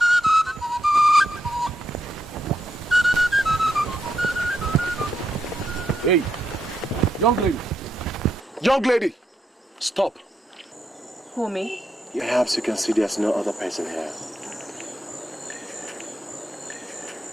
Hey, young lady. Young lady, stop. Who, me? Perhaps you can see there's no other person here.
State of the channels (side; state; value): both; normal; correlation 0.82